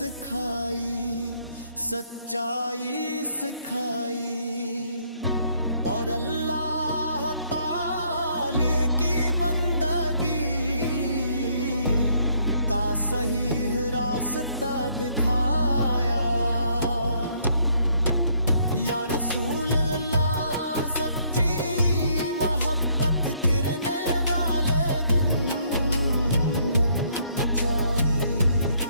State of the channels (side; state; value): both; inverted; correlation -0.68